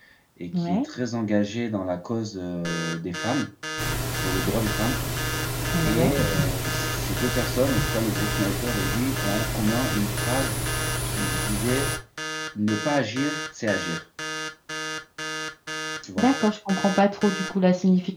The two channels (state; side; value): identical; both; correlation 1.00